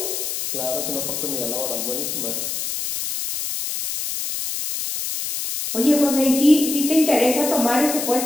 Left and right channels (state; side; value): noise; left; hiss, 4 dB below the sound